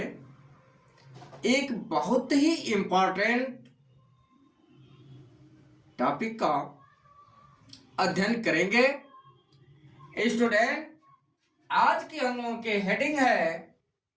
एक बहुत ही इम्पोर्टेंट टॉपिक का अध्ययन करेंगे। स्टूडेंट, आज की हम लोगों की हेडिंग है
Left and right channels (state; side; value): identical; both; correlation 1.00